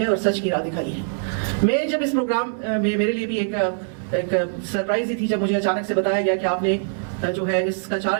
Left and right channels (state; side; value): silent; left; 64 dB below the other